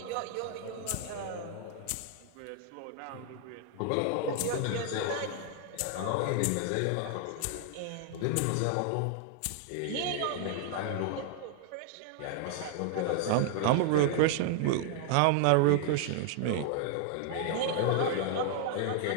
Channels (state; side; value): different; both; correlation 0.00